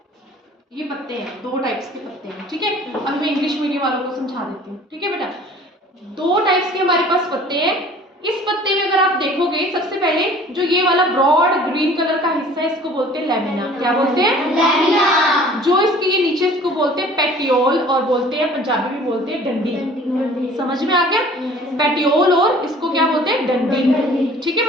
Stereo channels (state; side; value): normal; both; correlation 0.49